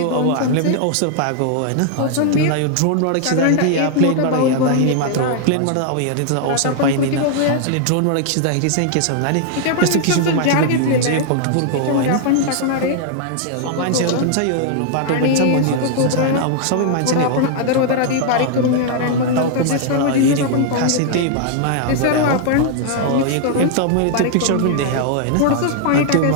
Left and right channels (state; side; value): different; both; correlation 0.00